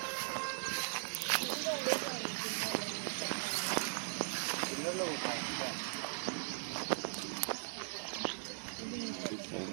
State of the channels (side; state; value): left; silent; digital silence